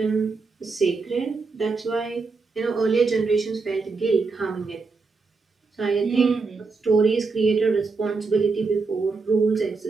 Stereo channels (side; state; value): left; quieter; 4.3 dB